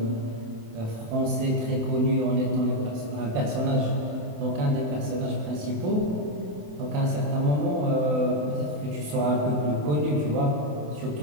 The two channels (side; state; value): left; late; 27 ms